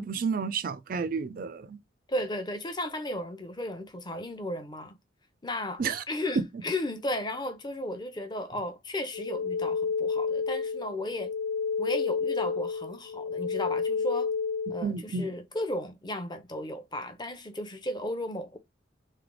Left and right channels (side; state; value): both; normal; correlation 0.07